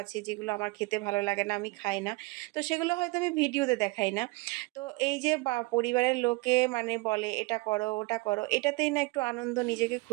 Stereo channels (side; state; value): left; quieter; 24.4 dB